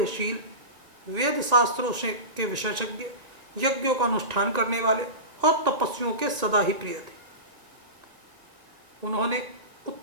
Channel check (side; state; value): left; late; 1.7 ms